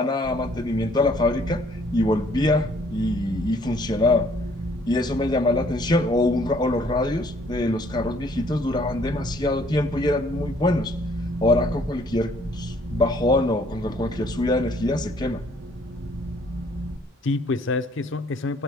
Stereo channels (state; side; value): normal; both; correlation 0.62